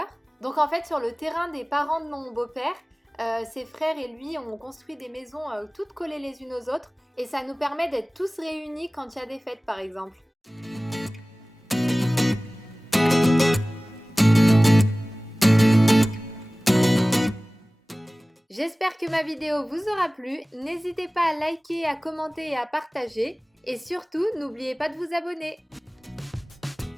Donc en fait, sur le terrain des parents de mon beau-père, ses frères et lui ont construit des maisons toutes collées les unes aux autres et ça nous permet d'être tous réunis quand il y a des fêtes par exemple. J'espère que ma vidéo vous aura plu. N'hésitez pas à liker, à commenter et à partager. Et surtout, n'oubliez pas de vous abonner.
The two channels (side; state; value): both; normal; correlation 0.98